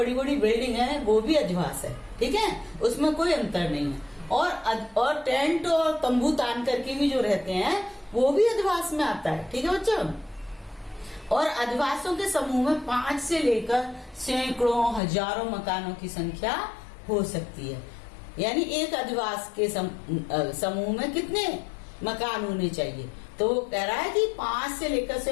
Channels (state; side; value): drops out; right; at 15.0 s